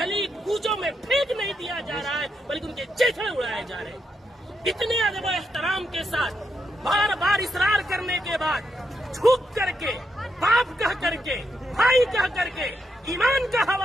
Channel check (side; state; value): both; normal; correlation 0.82